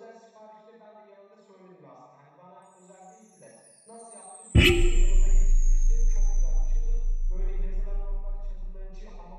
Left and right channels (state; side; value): identical; both; correlation 1.00